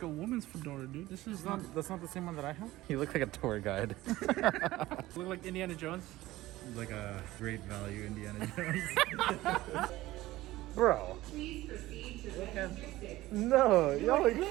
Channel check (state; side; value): quieter; left; 17.1 dB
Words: a woman's fedora, dude. This is not. That's not the same one that I have. You look like a tour guide. Look like Indiana Jones. Like a great value Indiana Jones. Bro. Please proceed to logistics. No, y'all are